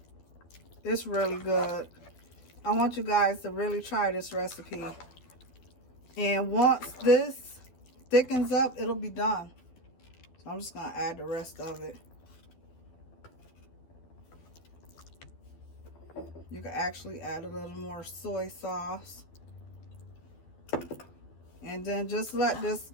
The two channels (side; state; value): right; late; 12 ms